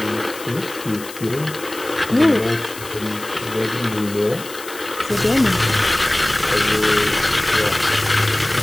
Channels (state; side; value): noise; left; hiss, 14 dB below the sound